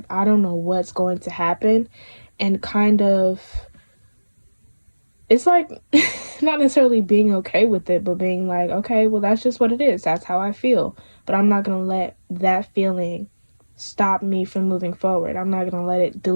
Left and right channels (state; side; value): inverted; both; correlation -1.00